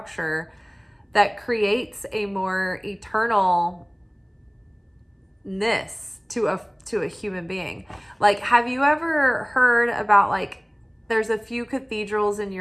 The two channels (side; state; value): both; identical; correlation 1.00